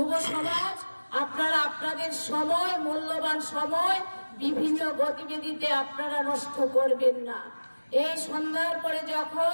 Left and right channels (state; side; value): inverted; both; correlation -1.00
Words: সমাজ আপনারা আপনাদের সময়, মূল্যবান সময় বিভিন্ন গতিবিধিতে আপনারা নষ্ট করবেন না। এই সন্ধ্যার পরে